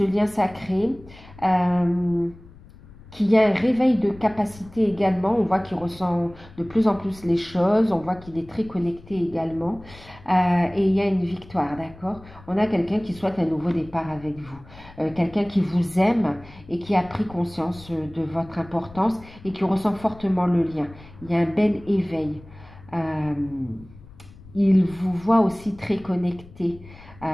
lien sacré, qu'il y a un réveil de capacité également, on voit qu'il ressent de plus en plus les choses, on voit qu'il est très connecté également, et il y a une victoire, d'accord? On a quelqu'un qui souhaite un nouveau départ avec vous, quelqu'un qui vous aime et qui a pris conscience de votre importance et qui ressent fortement le lien. Il y a un bel éveil. Il vous voit aussi très connecté,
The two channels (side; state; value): left; noise; rumble, 21 dB below the sound